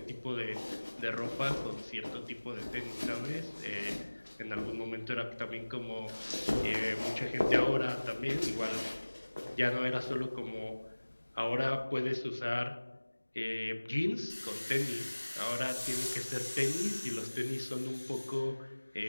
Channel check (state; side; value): inverted; both; correlation -1.00